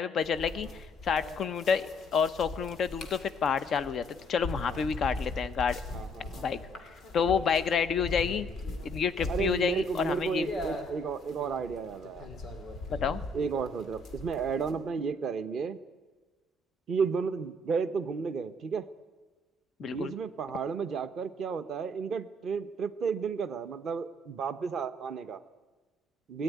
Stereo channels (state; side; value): normal; both; correlation 0.65